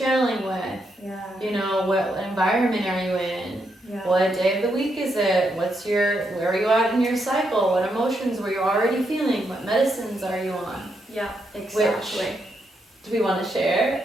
with? Yeah. What environment are you in? Yeah. What day of the week is it? Where are you at in your cycle? What emotions were you already feeling? What medicines are you on? Yeah, exactly. Do we want to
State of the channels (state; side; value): normal; both; correlation 0.80